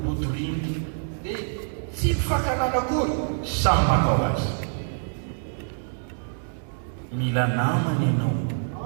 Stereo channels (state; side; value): silent; left; digital silence